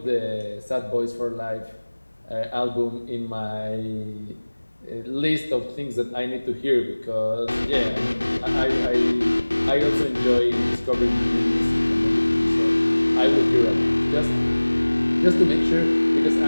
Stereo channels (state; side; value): inverted; both; correlation -1.00